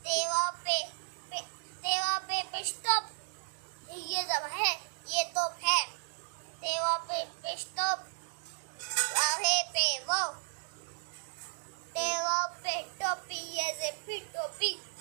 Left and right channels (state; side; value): silent; left; digital silence